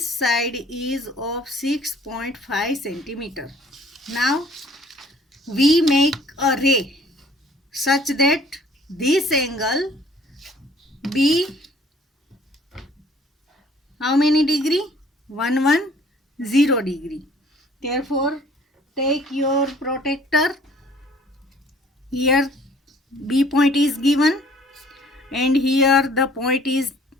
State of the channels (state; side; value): normal; both; correlation 0.56